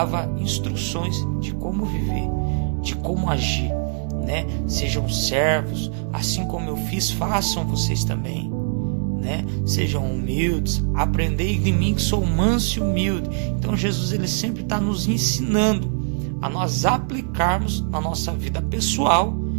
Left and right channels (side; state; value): left; silent; 63 dB below the other